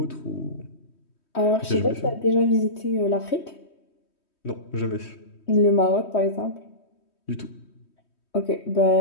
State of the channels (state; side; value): late; right; 3.1 ms